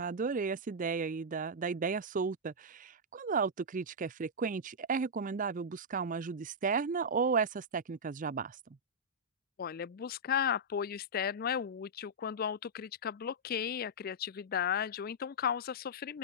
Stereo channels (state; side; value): normal; both; correlation -0.09